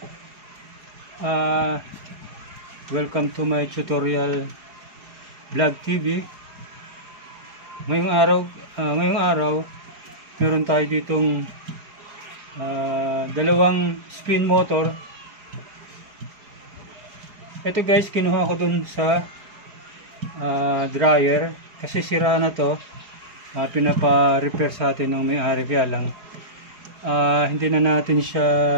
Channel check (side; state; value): left; late; 4.8 ms